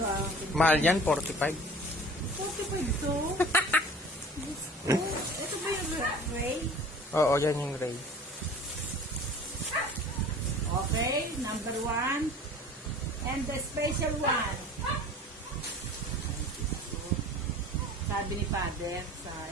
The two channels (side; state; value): both; normal; correlation 0.43